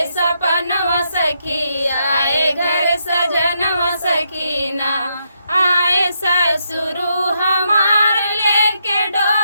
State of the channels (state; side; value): inverted; both; correlation -0.79